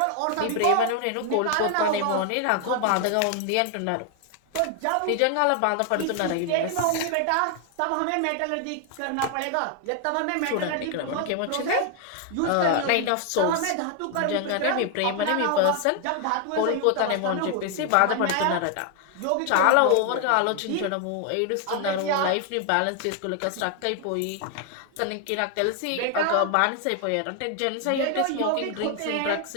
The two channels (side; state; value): both; different; correlation 0.00